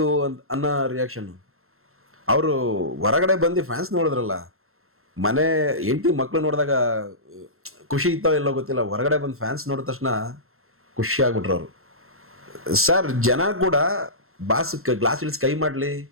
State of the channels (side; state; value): left; late; 0.62 ms